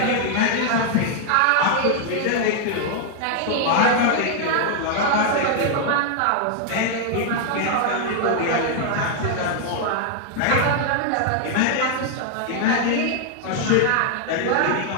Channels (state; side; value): different; both; correlation 0.00